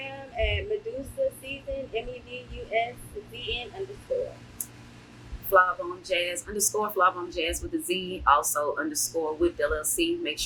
at Medusa Season, MEDUSZN_. _flawbomejazz _flawbomejazz with a Z. Also _ with LLC. Make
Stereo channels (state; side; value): identical; both; correlation 1.00